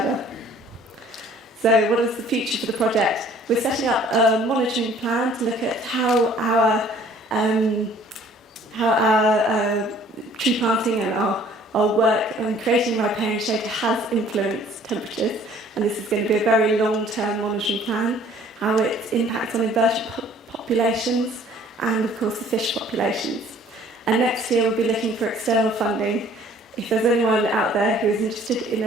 So what is the future for the project? We're setting up a monitoring plan to look at how our tree planting and our work on creating riparian shade has influenced temperatures, and this is going to be a very long-term monitoring plan, how it impacts on invertebrate populations and of course the fish populations. And next year we'll be looking for external funding. If there's anyone out there who is interested in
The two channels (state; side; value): normal; both; correlation 0.55